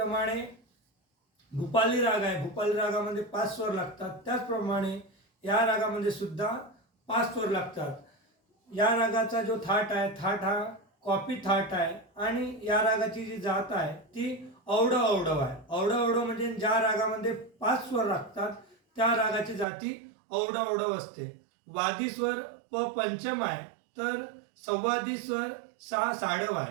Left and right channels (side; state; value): left; drops out; at 19.7 s